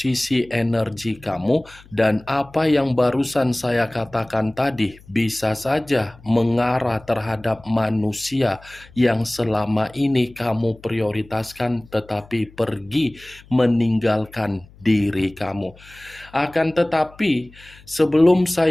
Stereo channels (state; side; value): noise; left; hum, 24 dB below the sound